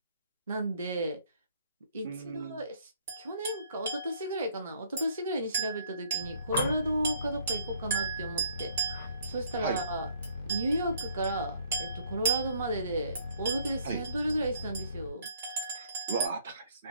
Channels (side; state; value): both; inverted; correlation -0.61